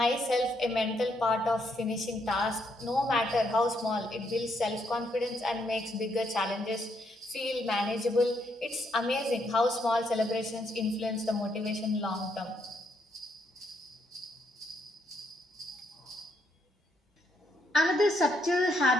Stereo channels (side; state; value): both; normal; correlation 0.75